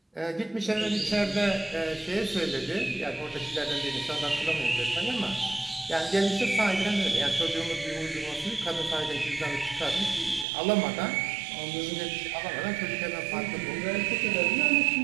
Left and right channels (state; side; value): drops out; left; at 10.5 s